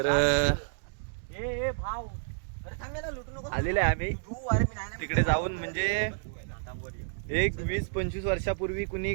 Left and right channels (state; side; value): silent; left; digital silence